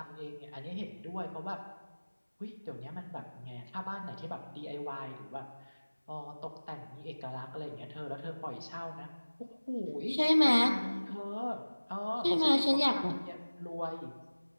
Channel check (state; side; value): inverted; both; correlation -1.00